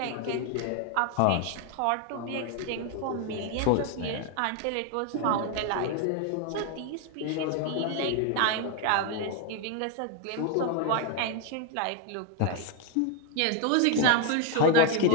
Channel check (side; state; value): both; different; correlation 0.01